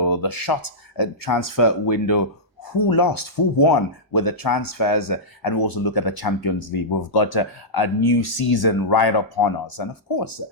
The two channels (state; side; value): normal; both; correlation -0.13